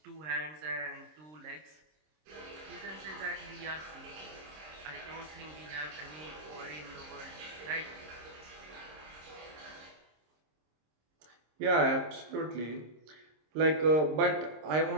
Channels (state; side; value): late; left; 26 ms